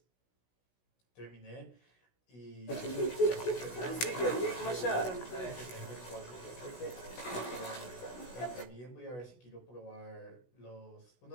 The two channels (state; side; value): late; right; 16 ms